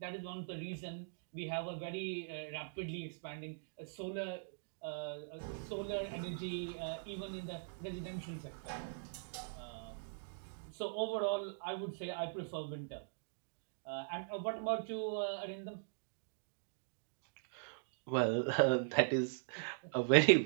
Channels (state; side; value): silent; left; digital silence